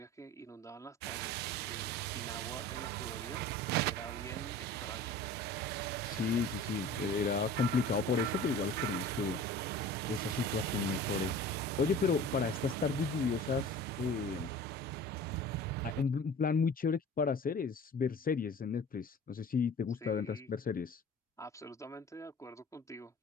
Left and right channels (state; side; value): normal; both; correlation 0.41